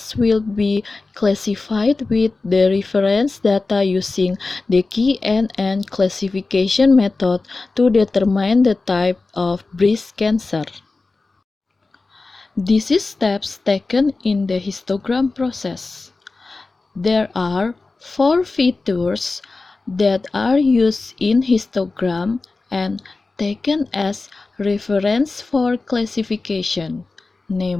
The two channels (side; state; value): right; quieter; 3.6 dB